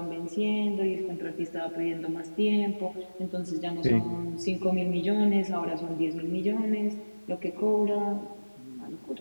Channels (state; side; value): inverted; both; correlation -1.00